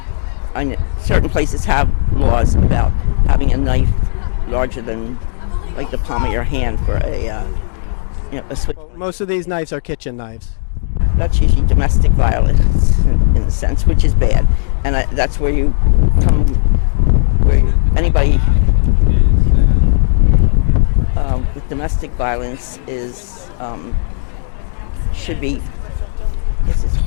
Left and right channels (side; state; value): right; silent; digital silence